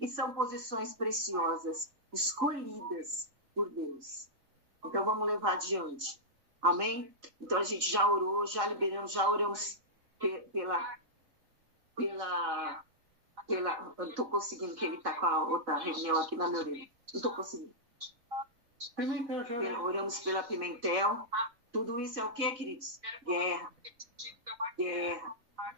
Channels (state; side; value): late; left; 3.7 ms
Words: são posições preciosas, escolhidas por Deus. Então vamos levar adiante. Amém? Então a gente já orou, já liberamos, já oramos pela eu não estou conseguindo, que ele está com a outra reunião aqui na minha orelha. Não estou conseguindo. Oramos pela Pimentel. Tudo isso é o quê, queridos? Guerra.